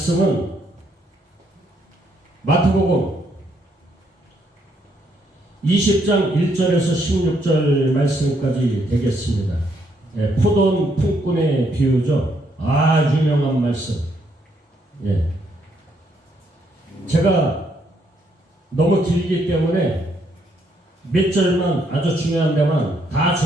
마태복음 20장 1절에서 16절 말씀까지 되겠습니다. 예, 포도원 품꾼의 비유죠. 유명한 말씀. 예. 제가 너무 길기 때문에 몇 절만, 아주 중요한 데만, 다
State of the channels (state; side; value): normal; both; correlation 0.73